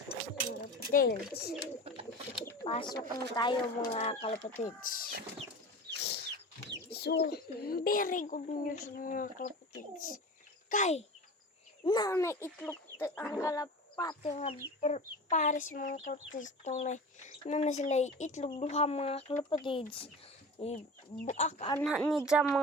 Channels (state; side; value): normal; both; correlation 0.34